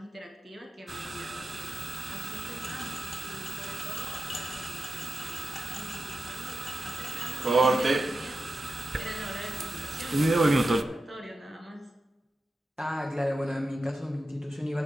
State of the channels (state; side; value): normal; both; correlation 0.91